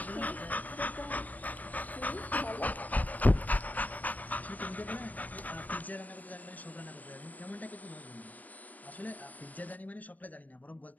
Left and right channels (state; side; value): late; right; 0.078 ms